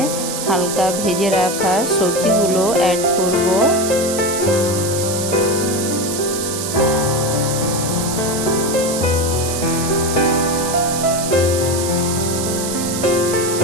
হালকা ভেজে রাখা সবজিগুলো অ্যাড করব।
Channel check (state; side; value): noise; right; hiss, 5 dB below the sound